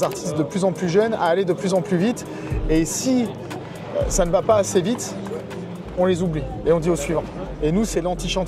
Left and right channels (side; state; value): both; identical; correlation 1.00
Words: artistes de plus en plus jeunes à aller de plus en plus vite. Et si ça ne va pas assez vite, on les oublie et on dit au suivant. Et nous, c'est